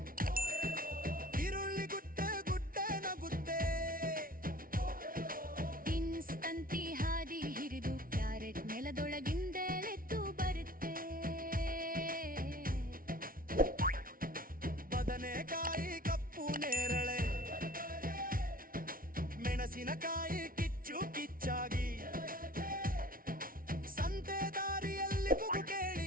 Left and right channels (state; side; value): late; left; 0.42 ms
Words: ಈರುಳ್ಳಿ ಗುಡ್ಡೆ ಗುಡ್ಡೆ ನಗುತ್ತೆ. ಬೀನ್ಸ್ ತಂತಿ ಹಾದಿ ಹಿರಿದು, ಕ್ಯಾರೆಟ್ ನೆಲದೊಳಗಿಂದೆಳೆದ್ದು ಬರುತ್ತೆ. ಬದನೆಕಾಯಿ ಕಪ್ಪು ನೇರಳೆ, ಮೆಣಸಿನಕಾಯಿ ಕಿಚ್ಚು ಕಿಚ್ಚಾಗಿ, ಸಂತೆ ದಾರಿಯಲ್ಲಿ ಕೂಗು